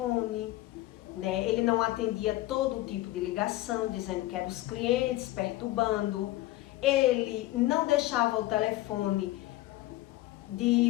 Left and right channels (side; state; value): right; quieter; 17.0 dB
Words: né? Ele não atendia todo tipo de ligação, dizendo que eram os clientes, perturbando. Ele não deixava o telefone